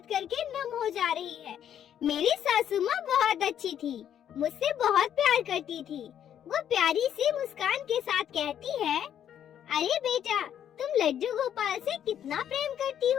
करके नम हो जा रही है। मेरी सासू माँ बहुत अच्छी थी, मुझसे बहुत प्यार करती थी। वो प्यारी सी मुस्कान के साथ कहती है, अरे बेटा, तुम लड्डू गोपाल से कितना प्रेम करती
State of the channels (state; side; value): quieter; right; 9.8 dB